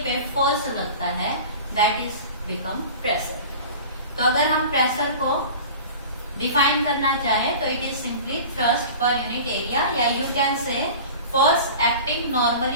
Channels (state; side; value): inverted; both; correlation -0.37